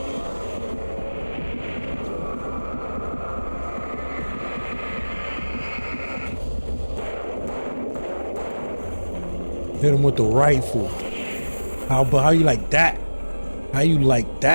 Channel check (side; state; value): both; inverted; correlation -1.00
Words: Hit him with the rifle. How you like that? How you like